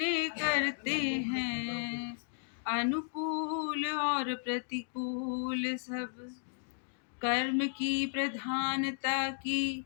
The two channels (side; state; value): right; silent; digital silence